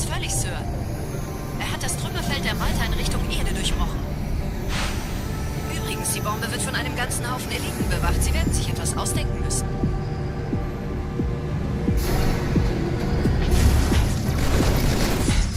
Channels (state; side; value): identical; both; correlation 1.00